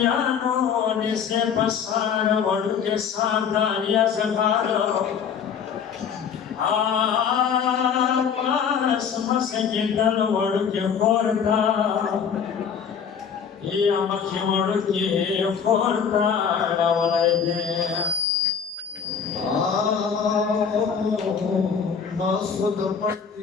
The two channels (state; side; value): quieter; right; 7.0 dB